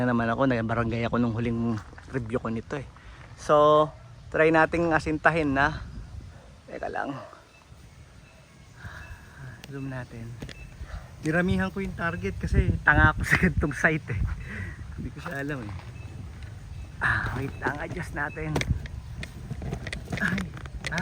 naman ako. Nagbarangay ako nung huling review ko nito eh. So, try nating asintahin na. Teka lang. Zoom natin. Diramihan ko yung target kasi tanga ako sa gantong site eh. Hindi ko siya alam eh. Wait lang, adjust natin.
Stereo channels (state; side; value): identical; both; correlation 1.00